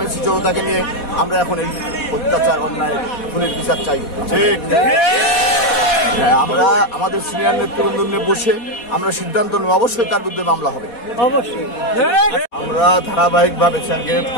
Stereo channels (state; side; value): late; right; 4.2 ms